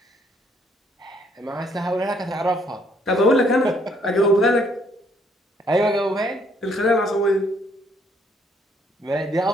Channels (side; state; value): both; normal; correlation 0.67